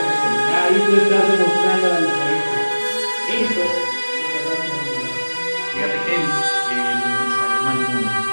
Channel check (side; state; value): both; inverted; correlation -1.00